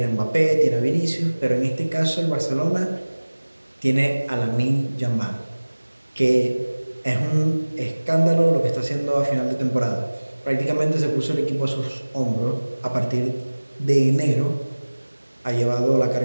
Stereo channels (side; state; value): both; inverted; correlation -1.00